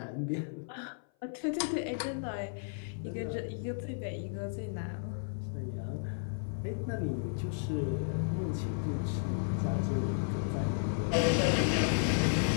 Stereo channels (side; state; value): right; silent; 55 dB below the other